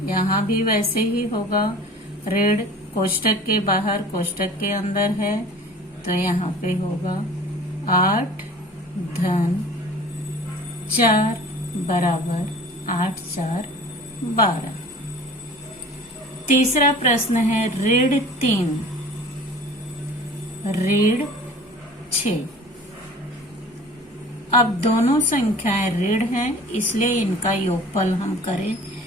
यहाँ भी वैसे ही होगा, ऋण कोष्टक के बाहर कोष्टक के अंदर है तो यहाँ पे होगा 8 धन 4 बराबर 8 4 12। तीसरा प्रश्न है ऋण 3 ऋण 6। अब दोनों संख्याएं ऋण हैं, इसलिए इनका योगफल हम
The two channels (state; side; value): normal; both; correlation 0.44